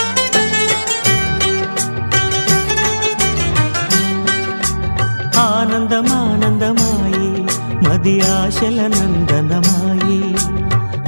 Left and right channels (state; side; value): inverted; both; correlation -1.00